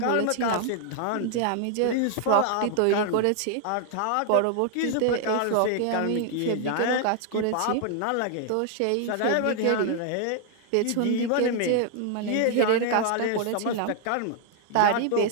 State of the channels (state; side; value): different; both; correlation 0.00